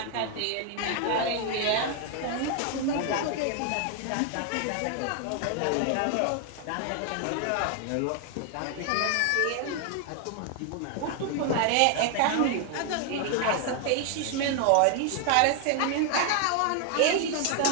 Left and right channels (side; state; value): both; different; correlation 0.00